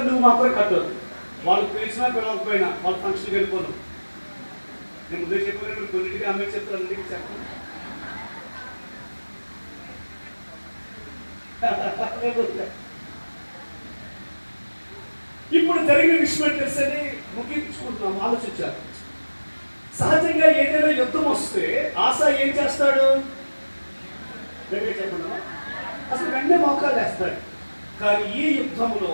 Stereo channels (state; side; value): inverted; both; correlation -1.00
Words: నువ్వు మాత్రం కట్టదు. వాళ్ళు పిలిచినా పిలవకపోయినా వాళ్ళ ఫంక్షన్కి వెళ్ళిపోను. నేను ముందే చెప్పాను, కొన్నింటికి అమ్మే చెప్తాను, అన్నింటికి చెప్పను. ఇప్పుడు జరిగిన విషయం తెలిసని ముగించుకుంటున్నాం. ఆలోచించారు. సహజంగా ఏదైనా యుద్ధం వస్తే ఆశ ఏం చేస్తాడు? చెప్పండి, అసలు వెంటనే మోకాలు వేస్తాడు. కానీ ఈ యుద్ధంలో